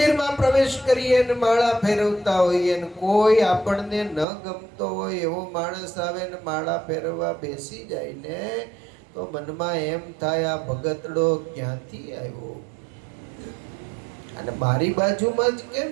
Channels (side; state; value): left; drops out; at 4.2 s